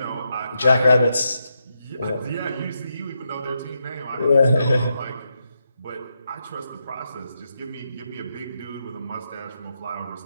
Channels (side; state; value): both; inverted; correlation -0.83